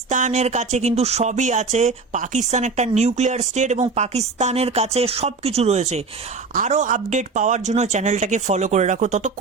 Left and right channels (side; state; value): left; quieter; 4.3 dB